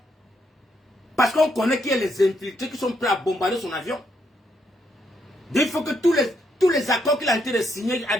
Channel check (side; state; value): both; normal; correlation 0.76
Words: Parce qu'on connaît qu'il y a les infiltrés qui sont prêts à bombarder son avion. Il faut que tous les accords qu'il a été de signer,